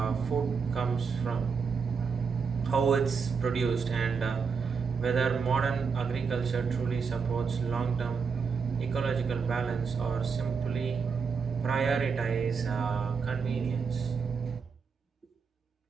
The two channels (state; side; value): quieter; left; 5.6 dB